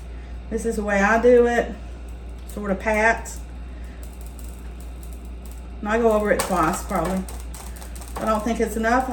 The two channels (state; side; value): identical; both; correlation 1.00